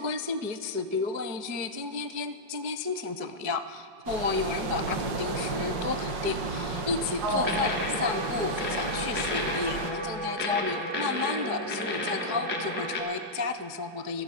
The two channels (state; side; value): late; left; 5.5 ms